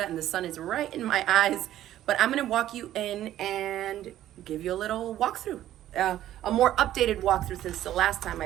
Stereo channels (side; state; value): left; quieter; 12.8 dB